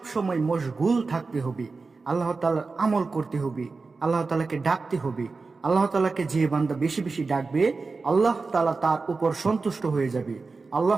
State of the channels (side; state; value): left; quieter; 4.1 dB